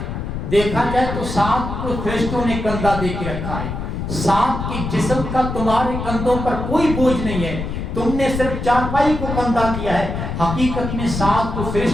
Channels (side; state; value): left; noise; rumble, 5 dB below the sound